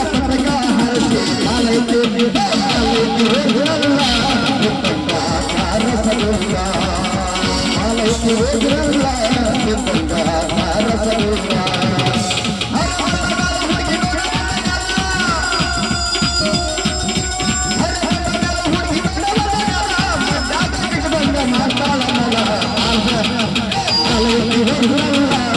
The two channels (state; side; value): identical; both; correlation 1.00